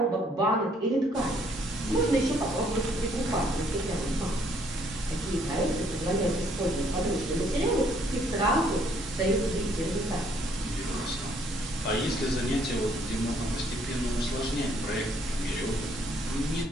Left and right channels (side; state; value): both; normal; correlation 0.66